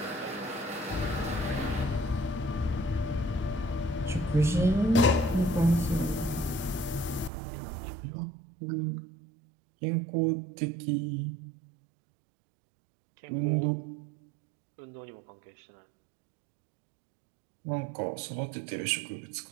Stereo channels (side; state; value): left; drops out; at 7.3 s